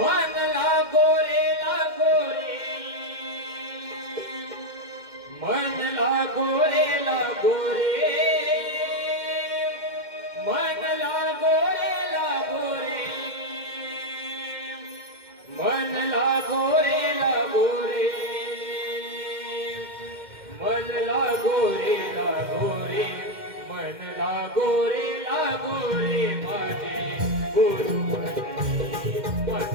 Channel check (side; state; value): left; late; 2.1 ms